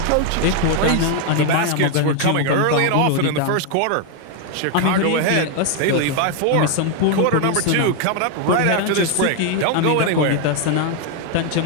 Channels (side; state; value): both; different; correlation 0.01